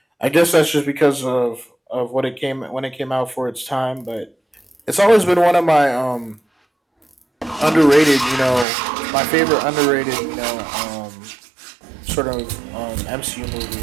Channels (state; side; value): drops out; left; at 8.7 s